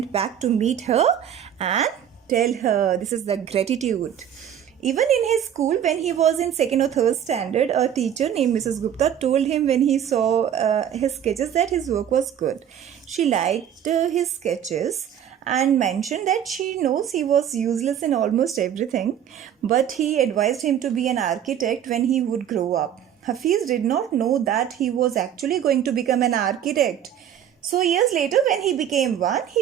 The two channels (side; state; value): left; quieter; 9.6 dB